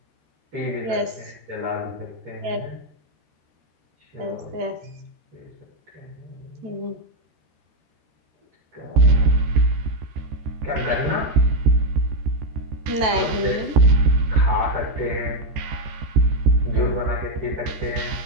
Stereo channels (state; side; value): late; left; 14 ms